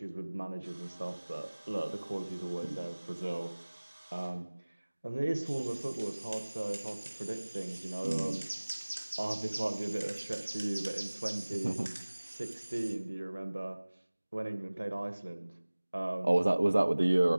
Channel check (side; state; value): both; inverted; correlation -1.00